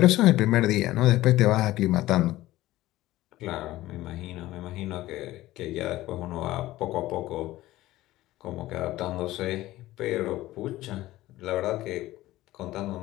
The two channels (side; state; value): right; quieter; 16.4 dB